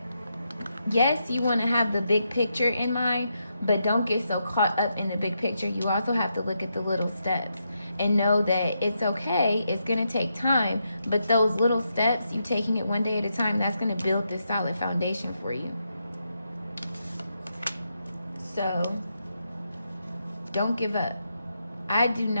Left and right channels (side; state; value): both; inverted; correlation -0.83